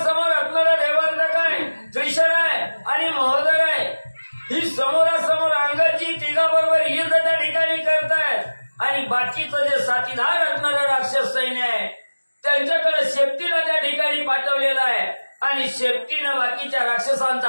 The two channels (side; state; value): both; inverted; correlation -1.00